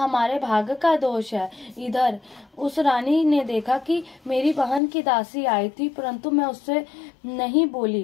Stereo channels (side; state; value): right; drops out; at 4.8 s